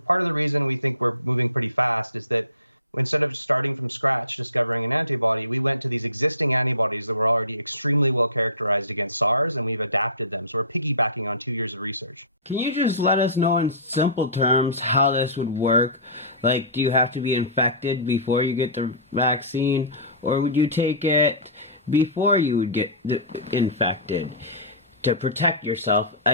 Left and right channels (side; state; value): both; inverted; correlation -0.32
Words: Part of the reason we think we're moving pretty fast is that instead of starting from scratch, discovering an antibody, we went to these existing antibodies that were already extremely well characterized against SARS, and we've adapted them. So we're piggybacking on 2 years of research. Can you just let us know in simple terms how this would work? Like, do you have to be infected before you get the vaccine, or would you take it before you would get infected to protect yourself